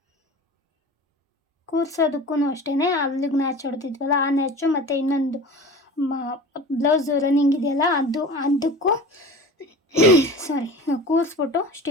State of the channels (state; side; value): normal; both; correlation 0.36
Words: ಕೂರ್ಸೋದಕ್ಕೂ ಅಷ್ಟೇ, ಅಲ್ಲಿಗೆ ನ್ಯಾಚ್ ಹೊಡೆದಿದ್ವಲ್ಲ ಆ ನ್ಯಾಚು ಮತ್ತು ಇನ್ನೊಂದು ಬ್ಲೌಸ್ ರನ್ನಿಂಗ್ ಇದೆಯಲ್ಲ ಅದಕ್ಕೂ ಕೂರಿಸ್ಬಿಟ್ಟು